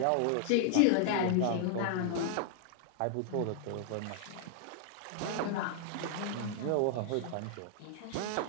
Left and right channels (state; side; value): different; both; correlation -0.01